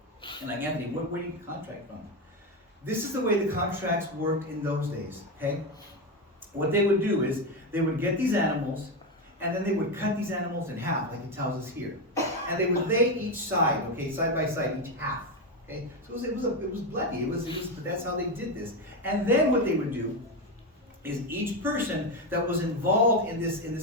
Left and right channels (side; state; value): both; normal; correlation 0.12